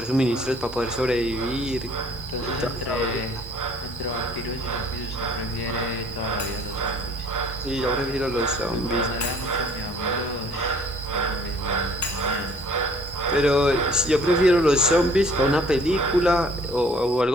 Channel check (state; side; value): normal; both; correlation 0.56